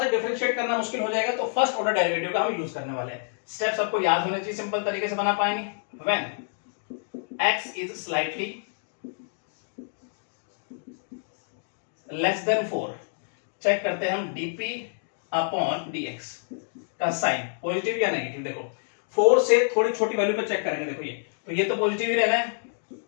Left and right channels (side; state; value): right; silent; digital silence